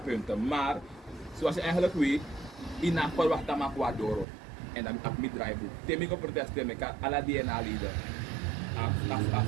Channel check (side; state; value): left; drops out; at 4.2 s